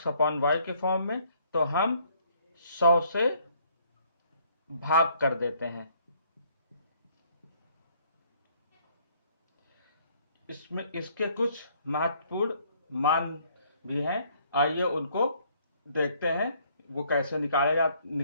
के फॉर्म में, तो हम 100 से भाग कर देते हैं। इसके कुछ महत्वपूर्ण मान भी हैं। आइए उनको देखते हैं, वो कैसे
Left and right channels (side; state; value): both; inverted; correlation -0.64